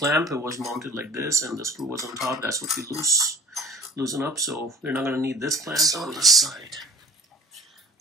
It was mounted like this, and the screw was on top. That's what we loosen up. So we're not going to need this clamp on the side.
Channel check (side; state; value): both; normal; correlation 0.47